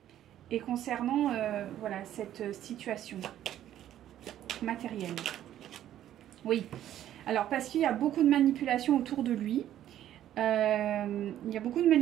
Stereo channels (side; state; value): left; quieter; 11.8 dB